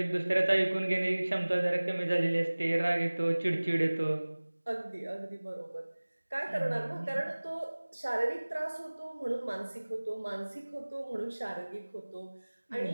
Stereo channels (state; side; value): inverted; both; correlation -1.00